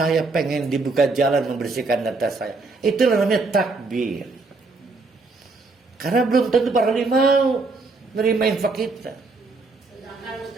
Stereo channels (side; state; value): left; quieter; 3.7 dB